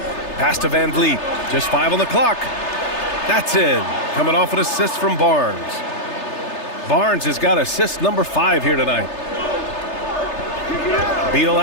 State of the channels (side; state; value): right; late; 3.3 ms